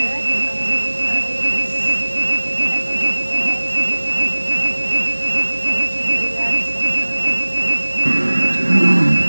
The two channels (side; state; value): both; inverted; correlation -1.00